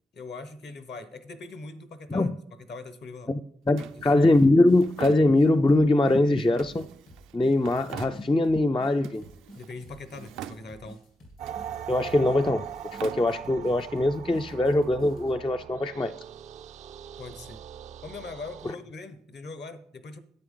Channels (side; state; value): both; normal; correlation 0.88